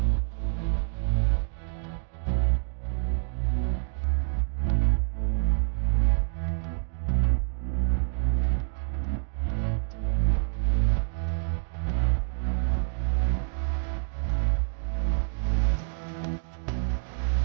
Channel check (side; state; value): left; silent; 60 dB below the other